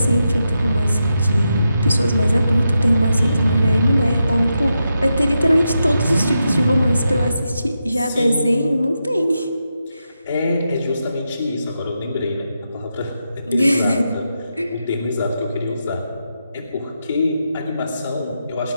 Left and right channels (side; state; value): both; inverted; correlation -0.86